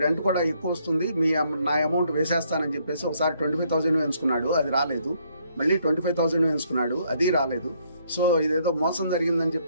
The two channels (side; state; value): both; inverted; correlation -0.69